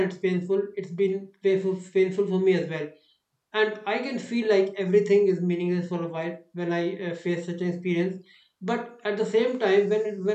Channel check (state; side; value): identical; both; correlation 1.00